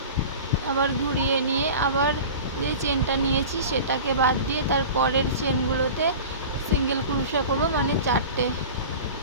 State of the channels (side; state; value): both; inverted; correlation -0.36